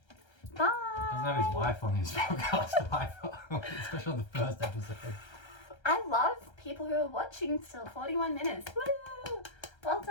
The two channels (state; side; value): late; right; 1.3 ms